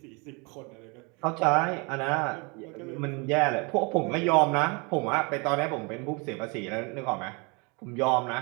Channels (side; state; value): left; quieter; 30.4 dB